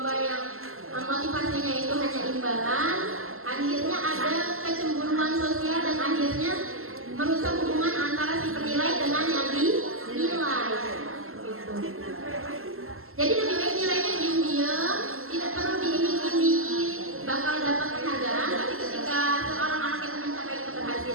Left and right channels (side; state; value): left; late; 0.62 ms